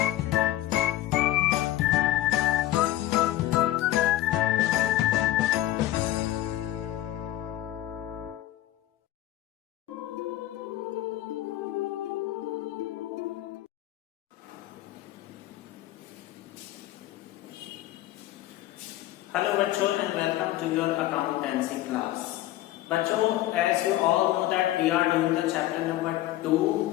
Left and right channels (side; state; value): right; quieter; 14.8 dB